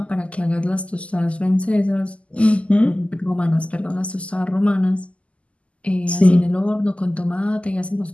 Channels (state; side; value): late; right; 0.060 ms